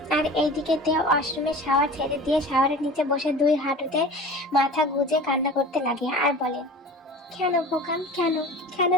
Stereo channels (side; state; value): both; normal; correlation 0.37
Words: আর এইদিকে তে ওয়াশরুমে শাওয়ার ছেড়ে দিয়ে শাওয়ারের নিচে বসে দুই হাঁটুতে মাথা গুজে কান্না করতে লাগে আর বলে, কেন বোকাম, কেন কেন